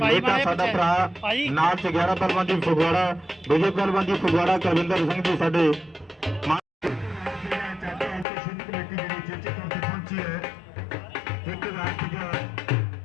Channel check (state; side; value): drops out; right; at 8.2 s